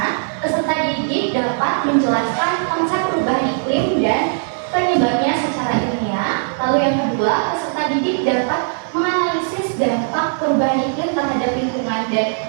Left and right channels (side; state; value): left; silent; digital silence